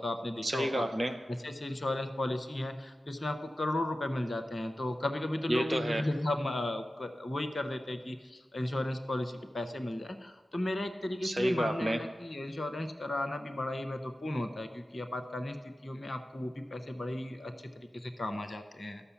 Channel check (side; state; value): both; normal; correlation 0.94